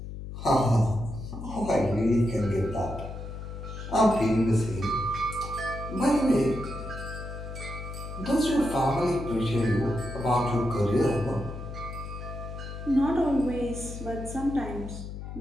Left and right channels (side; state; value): left; noise; hum, 9 dB below the sound